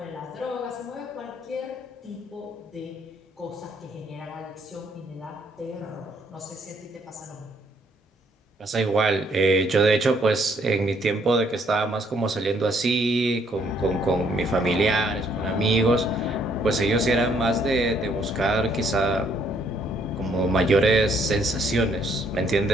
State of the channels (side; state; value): both; normal; correlation 0.68